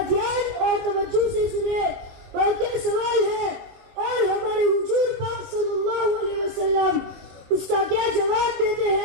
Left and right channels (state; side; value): late; left; 21 ms